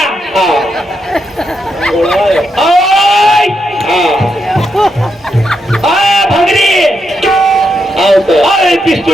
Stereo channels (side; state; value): both; normal; correlation 0.82